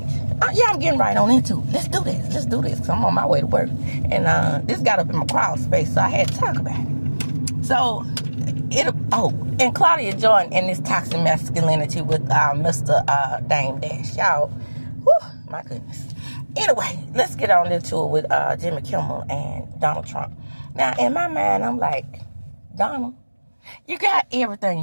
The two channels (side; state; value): both; inverted; correlation -1.00